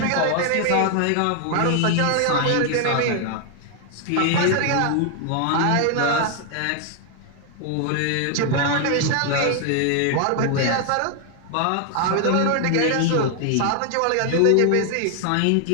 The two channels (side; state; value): both; different; correlation 0.00